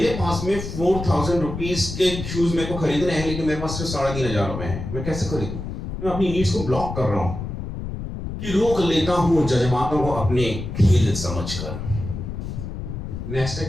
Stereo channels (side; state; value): left; noise; rumble, 7 dB below the sound